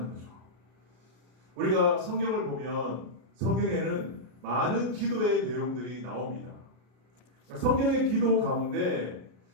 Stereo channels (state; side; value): late; left; 33 ms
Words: 거죠. 우리가 성경을 보면 성경에는 많은 기도의 내용들이 나옵니다. 성경의 기도 가운데